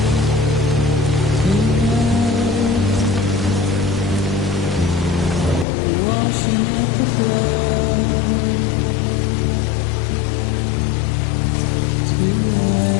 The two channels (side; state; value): right; drops out; at 5.7 s